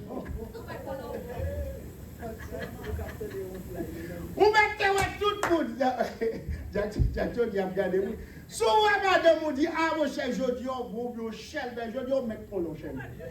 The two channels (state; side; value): identical; both; correlation 1.00